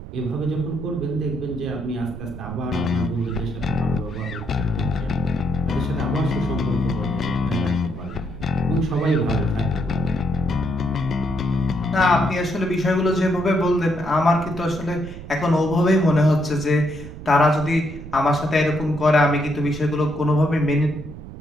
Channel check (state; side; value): noise; right; rumble, 12 dB below the sound